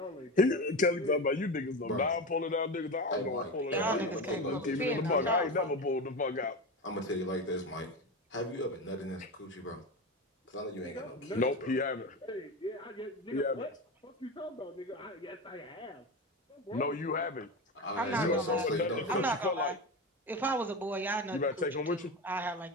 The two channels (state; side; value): normal; both; correlation 0.22